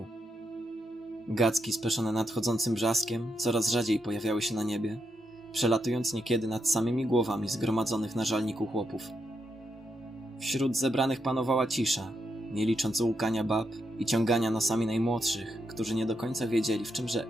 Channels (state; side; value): normal; both; correlation 0.82